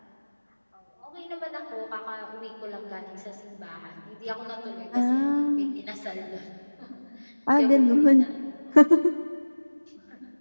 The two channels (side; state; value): both; inverted; correlation -1.00